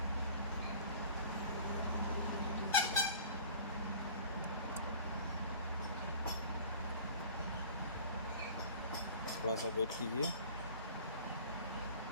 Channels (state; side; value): inverted; both; correlation -0.44